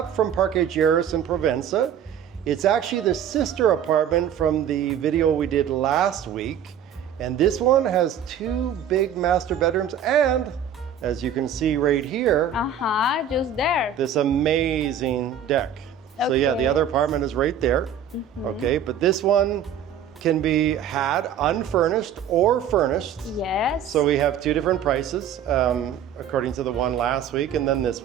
from Parque Lleras in Provenza. It's actually the sister apartment from the video we did last week. And this one has two big master bedrooms and, as you can see right here, Just there. this amazing deck. So yeah, the other apartment is right there. Okay, but this one can be had unfurnished or furnished. Yes. So we have two different prices, according to the one last week and then this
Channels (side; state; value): left; quieter; 8.1 dB